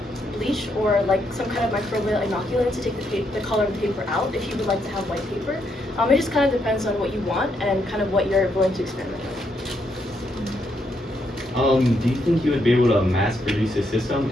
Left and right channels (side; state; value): both; normal; correlation 0.77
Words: bleach or like some kind of microbial inoculant to take the color of the paper out if you would like to have white paper. It just kind of depends on what you want and kind of what you're willing to experiment with. Do you think you would be able to mass produce a system?